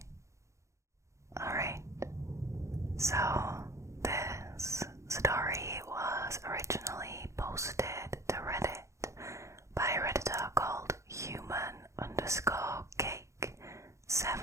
Alright, so this story was originally posted to Reddit by a Redditor called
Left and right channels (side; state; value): left; late; 0.14 ms